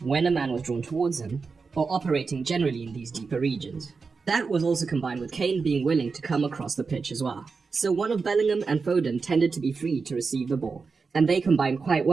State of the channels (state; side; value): quieter; left; 4.8 dB